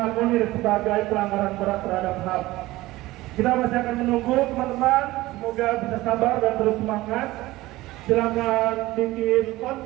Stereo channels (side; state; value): left; quieter; 18.2 dB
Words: Munir sebagai pelanggaran berat terhadap HAM. Kita masih akan menunggu teman-teman, semoga bisa sabar dan terus semangat. Silakan bikin